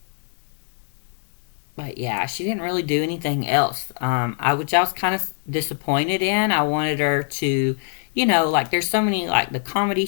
But yeah, she didn't really do anything else. Which I was kind of disappointed in. I wanted her to, like there's so many like the comedy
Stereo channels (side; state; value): right; silent; digital silence